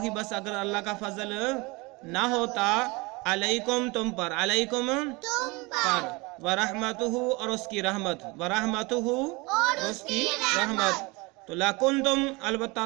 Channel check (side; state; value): left; quieter; 25.6 dB